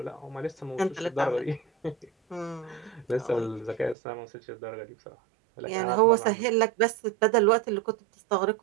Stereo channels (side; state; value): left; drops out; at 4.0 s